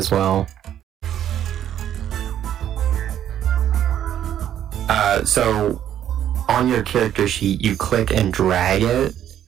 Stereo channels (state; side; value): quieter; left; 10.6 dB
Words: well. So, on your character sheet, you click and drag it,